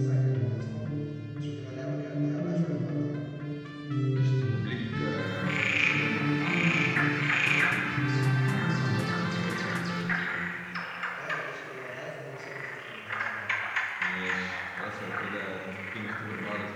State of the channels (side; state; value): both; identical; correlation 1.00